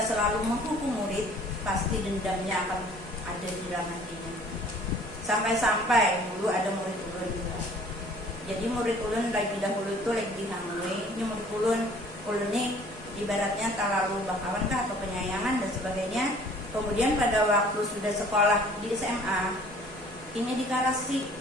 selalu menghukum murid, pasti dendamnya akan ada di dalam hatinya. Sampai-sampai dulu ada murid ulun juga. Jadi murid ulun lagi dahulu itu lagi dihamui. Ini murid ulun ini ibaratnya terlalu bakawan kah atau penyayangan dan sebagainya. Kemudian pada waktu sudah sekolah di SMA, ini dikarasi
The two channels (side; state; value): both; normal; correlation 0.53